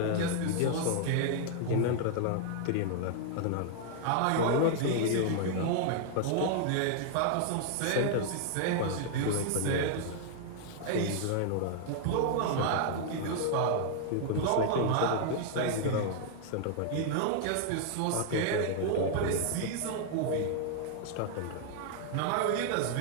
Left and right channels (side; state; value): both; different; correlation 0.00